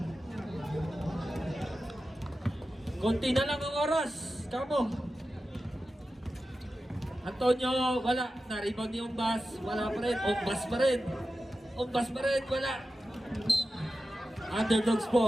Konti na lang ang oras. Kamo. Antonio, wala. Na-rebound ni Umbas. Wala pa rin. Umbas pa rin. Umbas pa rin. Wala. Underdogs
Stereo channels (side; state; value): both; normal; correlation 0.92